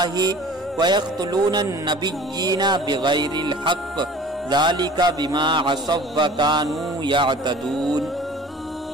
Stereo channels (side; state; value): both; normal; correlation 0.45